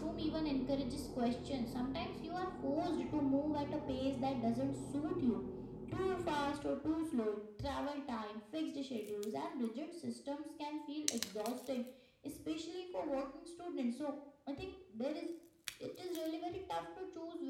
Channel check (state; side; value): identical; both; correlation 1.00